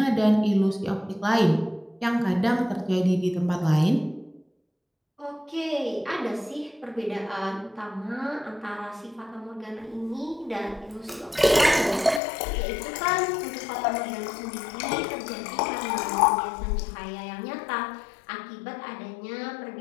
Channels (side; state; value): right; drops out; at 12.2 s